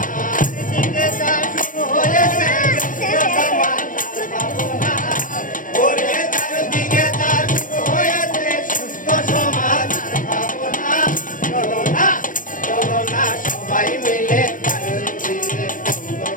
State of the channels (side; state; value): right; late; 0.39 ms